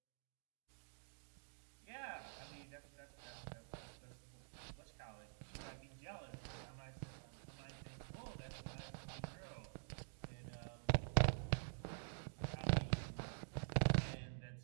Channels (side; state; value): left; silent; digital silence